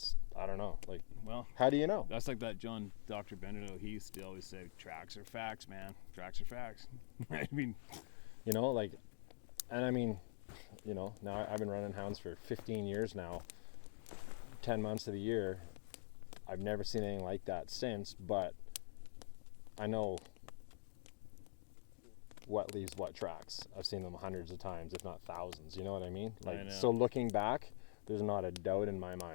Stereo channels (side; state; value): right; silent; digital silence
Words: I don't know. Like, Well, how do you know? that's like that John Dr. Benito. He used to always say, tracks are facts, man. Tracks are facts. I mean, You know, like, and I mean, you know, now I've been running hounds for 15 years now, 10 months of the year. I've never seen anything like that since, but I know what leaves what tracks. I've seen them hundreds of times, if not thousands. You know what I mean? I Like, know. so looking back, there's not a doubt in my